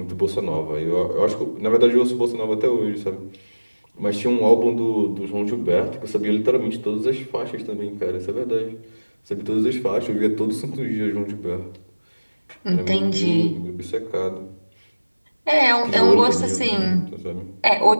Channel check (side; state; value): both; inverted; correlation -1.00